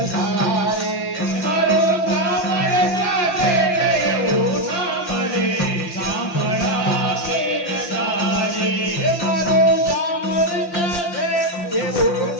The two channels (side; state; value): right; late; 5.7 ms